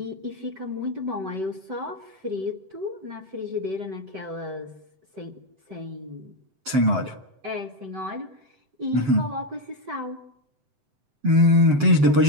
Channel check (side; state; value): left; late; 7.8 ms